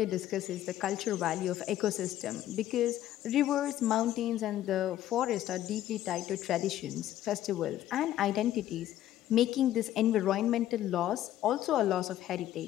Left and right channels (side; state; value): right; quieter; 12.9 dB